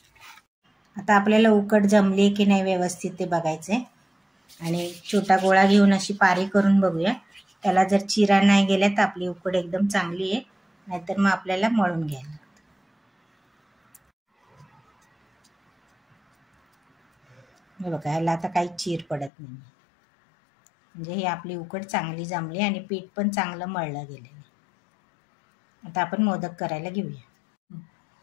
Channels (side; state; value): right; drops out; at 19.3 s